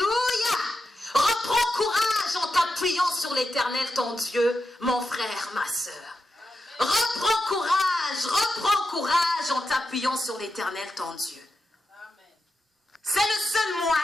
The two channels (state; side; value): normal; both; correlation 0.88